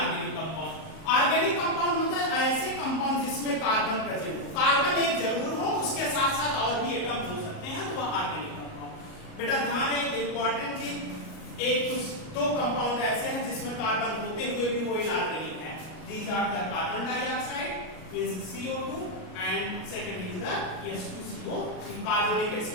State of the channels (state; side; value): late; right; 38 ms